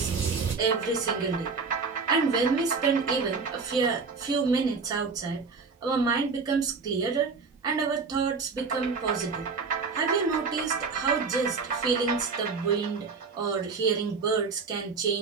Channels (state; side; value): quieter; left; 4.7 dB